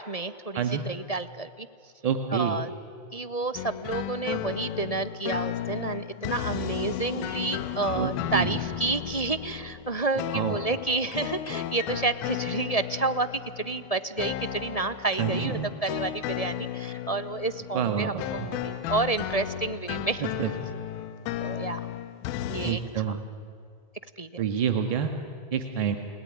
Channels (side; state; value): right; late; 1.7 ms